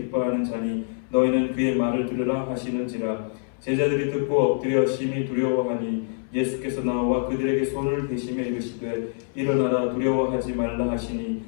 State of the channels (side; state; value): right; silent; 61 dB below the other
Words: 자니 너희는 그의 말을 들으라 하시는지라. 제자들이 듣고 엎드려 심히 두려워하니 예수께서 나와 그들에게 손을 대시며 이르시되 일어나라 두려워하지 말라 하시니